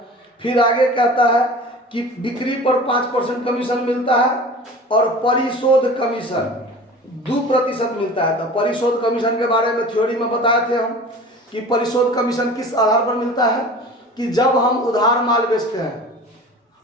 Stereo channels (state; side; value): normal; both; correlation 0.39